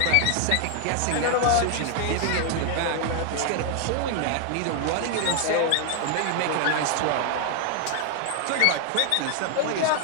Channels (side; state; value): both; different; correlation 0.00